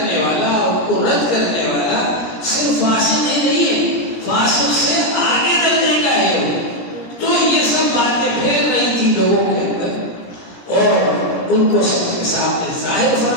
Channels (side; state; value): right; late; 17 ms